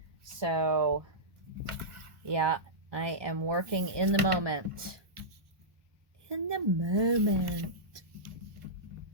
So, yeah, I am working in the moment. In the moment.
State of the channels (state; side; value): late; left; 1.1 ms